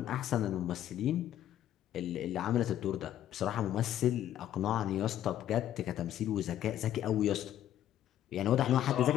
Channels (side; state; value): right; quieter; 11.8 dB